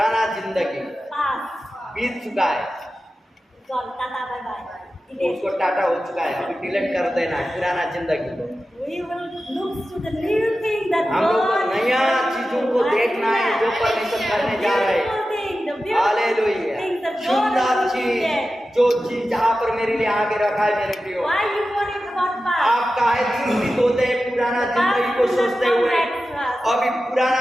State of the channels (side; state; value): both; normal; correlation 0.93